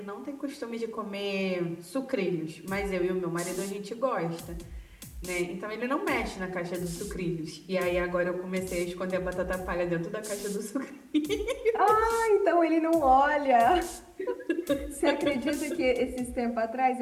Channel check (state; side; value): identical; both; correlation 1.00